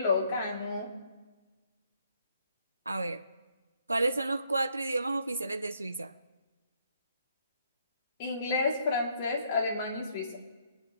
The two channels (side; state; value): both; inverted; correlation -0.70